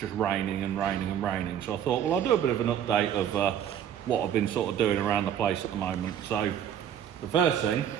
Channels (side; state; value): left; quieter; 9.6 dB